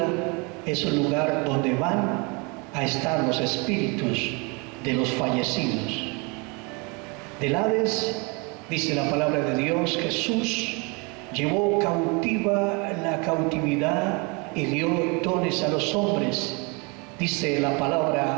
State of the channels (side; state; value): left; quieter; 30.3 dB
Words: es un lugar donde van a estar los espíritus de los fallecidos. Del Hades, dice la palabra de Dios, Jesús llevó cautiva la cautividad y dio dones a los hombres. Dice la